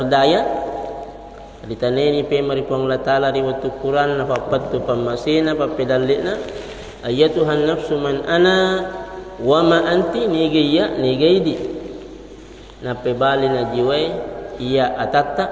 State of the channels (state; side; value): identical; both; correlation 1.00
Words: Ditaneni pe maripong Allah Ta'ala riwayat Quran apa pattu pamasina apa pedalina ayatuhan nafsu man ana wa ma anti nigaya nigaidi. Na pe bali na jiwa iya atata